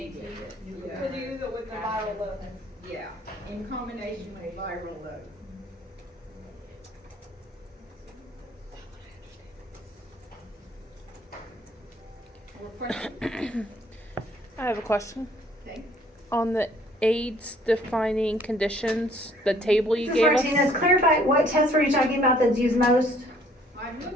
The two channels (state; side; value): normal; both; correlation 0.60